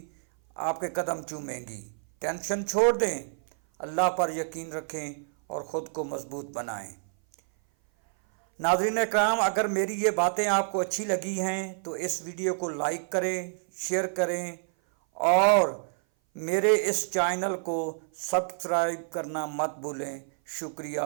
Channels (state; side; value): silent; left; 57 dB below the other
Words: आपके कदम चूमेंगी। टेंशन छोड़ दें, अल्लाह पर यकीन रखें और ख़ुद को मज़बूत बनाएं। नाज़रीन इकराम, अगर मेरी ये बातें आपको अच्छी लगी हैं तो इस वीडियो को लाइक करें, शेयर करें और मेरे इस चैनल को सब्सक्राइब करना मत भूलें। शुक्रिया।